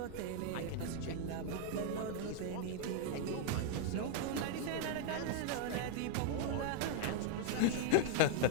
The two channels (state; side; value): different; both; correlation 0.00